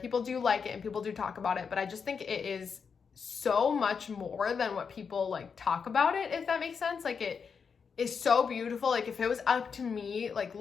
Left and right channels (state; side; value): quieter; right; 6.0 dB